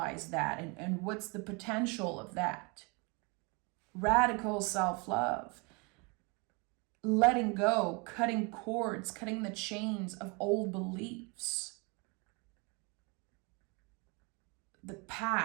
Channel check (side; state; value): left; quieter; 30.3 dB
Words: that, and what's the potential of that? Radical self-love. Letting go, cutting cords, cutting the chains of old beliefs. The